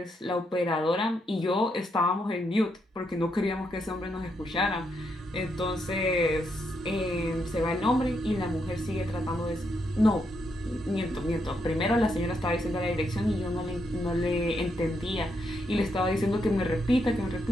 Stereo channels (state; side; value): normal; both; correlation 0.79